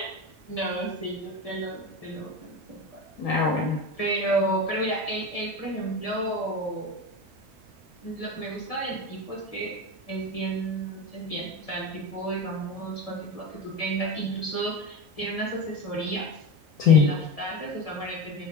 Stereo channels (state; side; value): normal; both; correlation 0.24